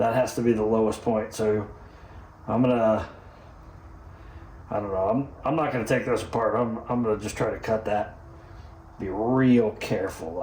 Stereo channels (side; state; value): both; identical; correlation 1.00